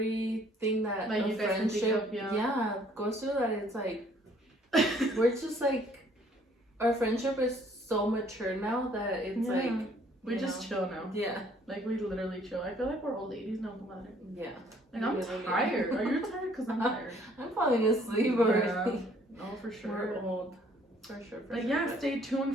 that like a you guys can think friendship of, yeah, goes through. That it's like we're just like, our friendship is so mature now that it's like we just chill now. Yeah, like we literally chill. I feel like we're old ladies now, Comadre. Yeah. Like, I'm tired. Are you tired? Cause I'm tired. I'm falling asleep already. Yeah. No, for sure. We're old. For sure. But yeah, stay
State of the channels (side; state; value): both; normal; correlation 0.61